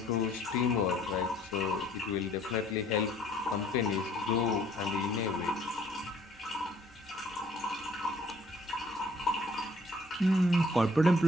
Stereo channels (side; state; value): both; normal; correlation 0.60